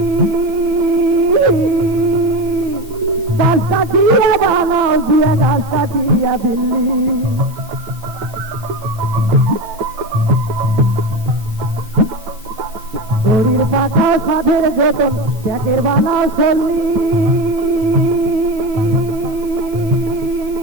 5 কাঠিয়া বানাও দিয়া 10 কাঠিয়া বিল্লি। ঘড়ির পাতার সাথে যতন প্যাকের বানাও চললি,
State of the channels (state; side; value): late; left; 9.8 ms